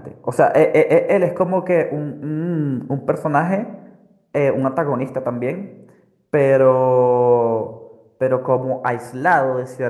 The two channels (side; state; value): both; identical; correlation 1.00